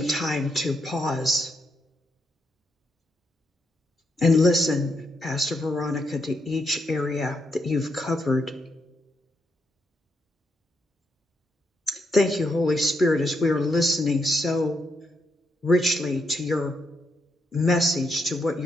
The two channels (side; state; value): both; normal; correlation 0.80